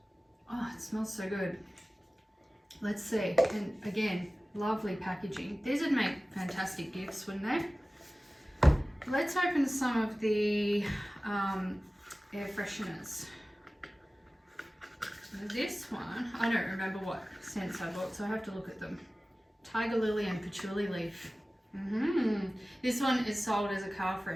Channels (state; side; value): normal; both; correlation 0.97